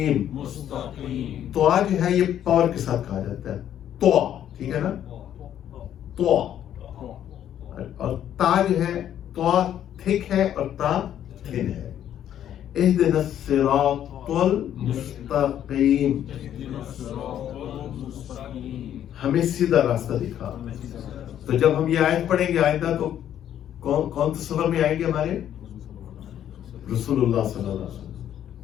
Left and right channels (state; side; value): quieter; right; 10.6 dB